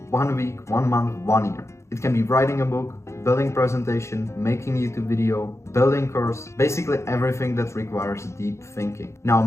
1 week, 1 month, 1 year. It can be writing a book, building presentation, making YouTube video, building course, basically everything that requires deep thinking. Now,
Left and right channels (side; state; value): right; late; 0.14 ms